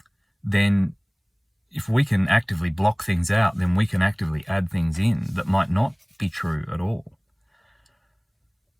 Then if we can actively block things out, then we can actively add things in that might not be true at all.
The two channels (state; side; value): identical; both; correlation 1.00